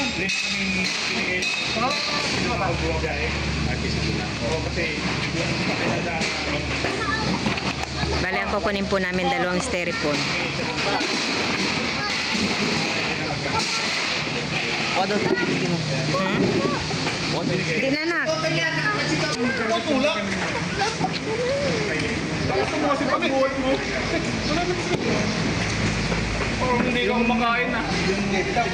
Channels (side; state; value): both; identical; correlation 1.00